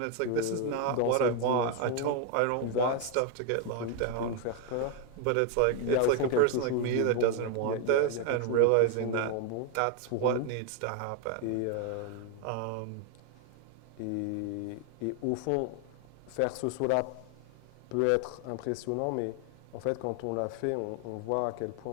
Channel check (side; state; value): both; different; correlation 0.01